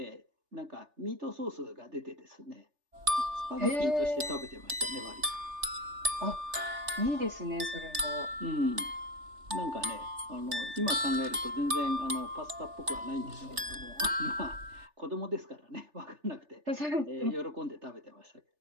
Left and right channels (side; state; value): left; late; 3.3 ms